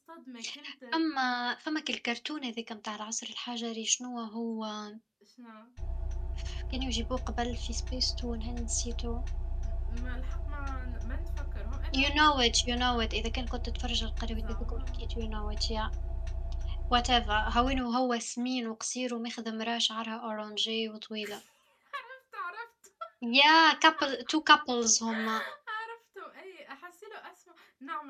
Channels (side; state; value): both; identical; correlation 1.00